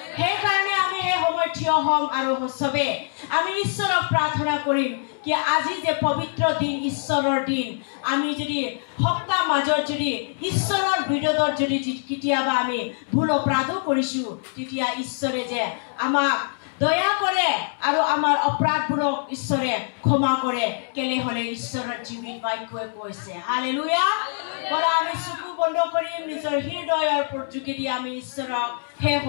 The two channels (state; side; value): silent; right; 63 dB below the other